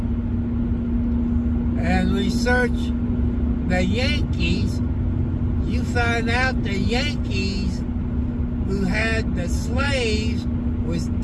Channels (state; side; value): identical; both; correlation 1.00